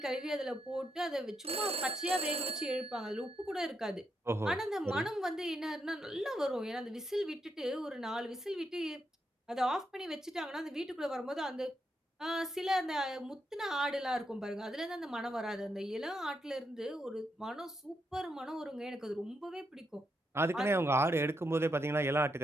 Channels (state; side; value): normal; both; correlation 0.81